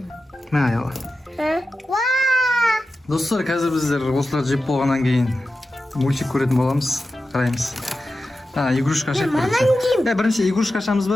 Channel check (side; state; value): both; normal; correlation 0.92